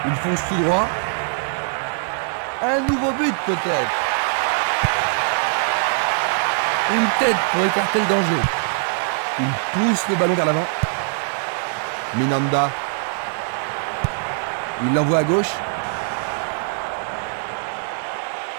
Il fonce tout droit. Un nouveau but peut-être. Une tête pour écarter le danger. Il pousse le ballon vers l'avant. Minanda. Il l'envoie à gauche.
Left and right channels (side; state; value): left; silent; digital silence